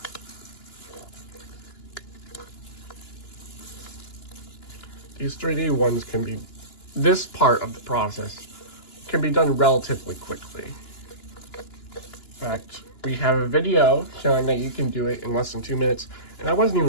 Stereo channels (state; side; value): late; right; 2.9 ms